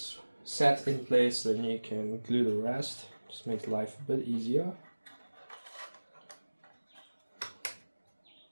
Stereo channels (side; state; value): both; inverted; correlation -1.00